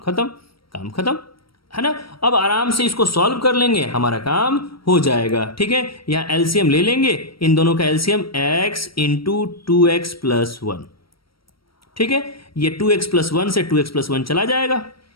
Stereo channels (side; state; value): right; late; 0.75 ms